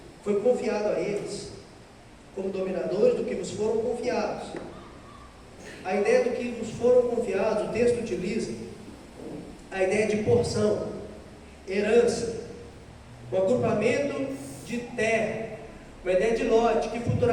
foi confiado a eles como dominadores do que vos foram confiados. A ideia do que vos foram confiados, o texto utiliza a ideia de porção, herança, o agrupamento de terra, uma ideia de lote, que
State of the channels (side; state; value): both; identical; correlation 1.00